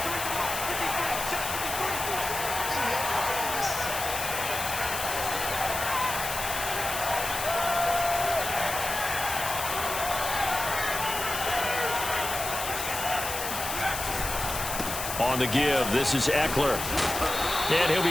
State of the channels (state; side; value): noise; left; hiss, 5 dB below the sound